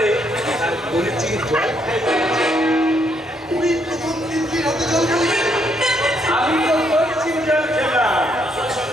আর বলেছি জল খাইবে তুই প্রথম তিতলির হাতে জল খাবি আমি তো করছি জল খেলাম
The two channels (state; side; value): normal; both; correlation 0.73